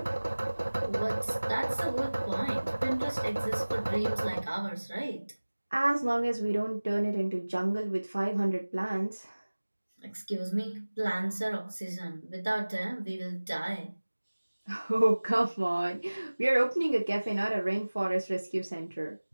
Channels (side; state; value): both; inverted; correlation -1.00